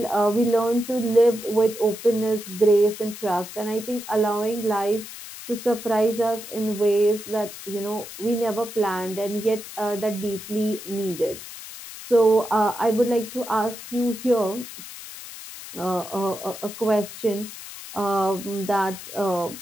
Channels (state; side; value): noise; left; hiss, 13 dB below the sound